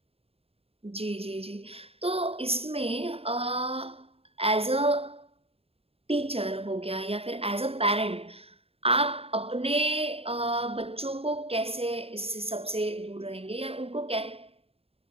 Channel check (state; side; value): late; left; 0.28 ms